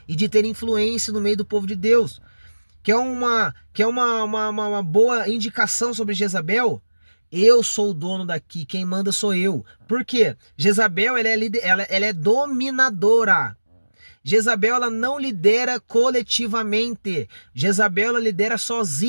e de ter influência no meio do povo de Deus. Quer uma boa indicação sobre Jezabel? Eu sou o dono daqui, quem manda sou eu. Por quê? Jezabel, ela é dominadora. Jezabel, ela não lidera coletivamente. Jezabel, ela lidera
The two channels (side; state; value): both; inverted; correlation -1.00